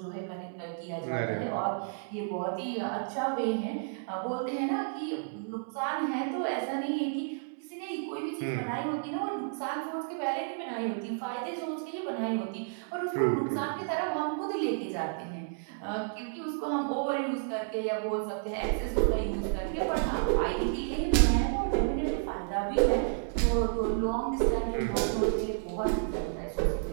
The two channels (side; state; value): left; silent; 57 dB below the other